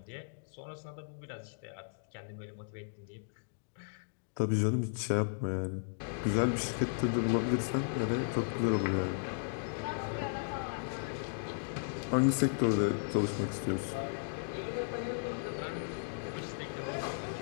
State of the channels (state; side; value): silent; right; digital silence